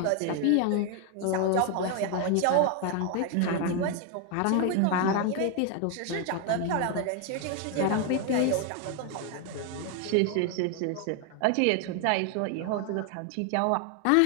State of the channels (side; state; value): both; different; correlation 0.01